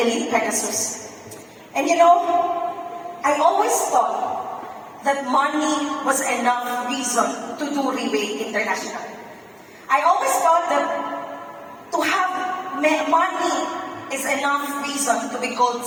Pegasus. And you know, I always thought that money was enough reason to do RIWAY International. I always thought that to have money is enough reason to be called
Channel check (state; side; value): identical; both; correlation 1.00